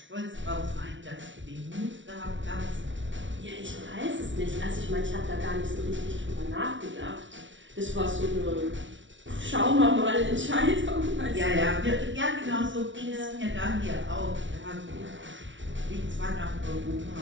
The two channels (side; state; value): left; late; 0.55 ms